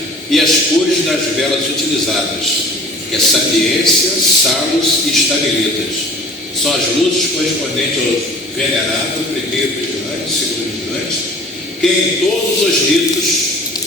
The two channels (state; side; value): normal; both; correlation 0.45